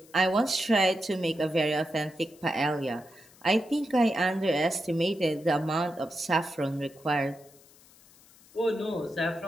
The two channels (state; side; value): noise; left; hiss, 26 dB below the sound